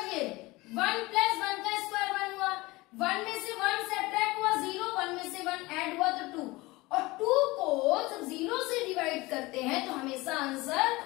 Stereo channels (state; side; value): quieter; right; 21.5 dB